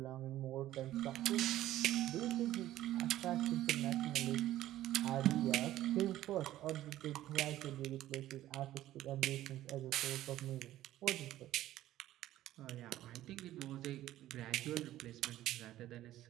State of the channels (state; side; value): quieter; left; 14.0 dB